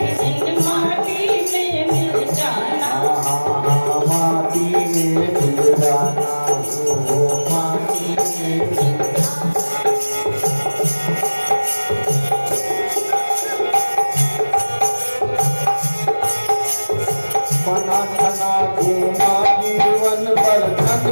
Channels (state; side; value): inverted; both; correlation -1.00